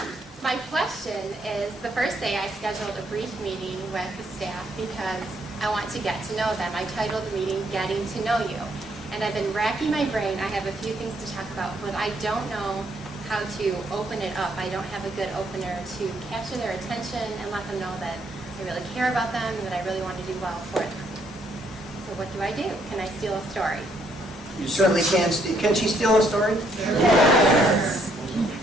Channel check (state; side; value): normal; both; correlation 0.71